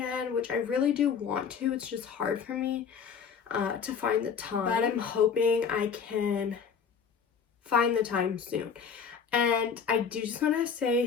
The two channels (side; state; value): right; quieter; 6.6 dB